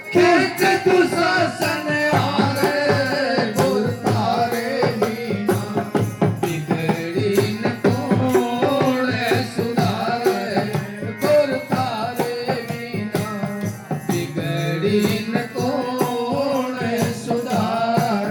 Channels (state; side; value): identical; both; correlation 1.00